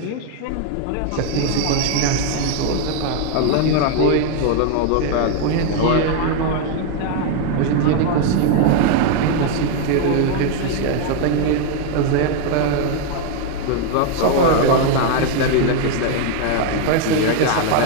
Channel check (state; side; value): different; both; correlation 0.01